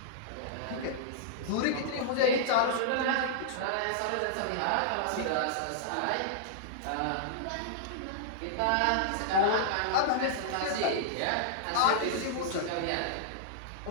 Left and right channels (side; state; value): both; different; correlation -0.02